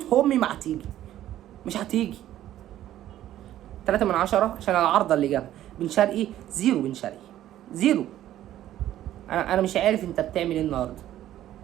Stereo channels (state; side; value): quieter; left; 12.8 dB